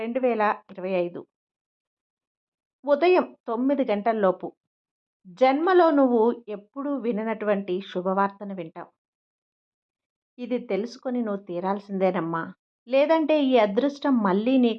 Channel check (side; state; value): both; identical; correlation 1.00